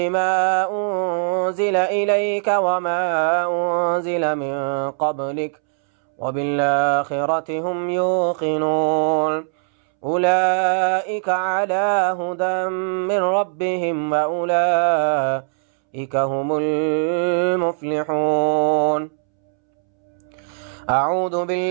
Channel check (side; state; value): left; silent; 65 dB below the other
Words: أنزل إليك وما أنزل من قبلك وبالآخرة هم يوقنون أولئك على هدى من ربهم وأولئك هم المفلحون. أعوذ